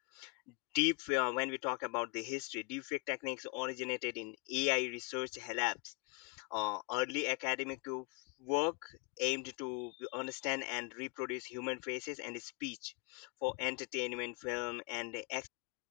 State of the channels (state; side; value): quieter; right; 30.3 dB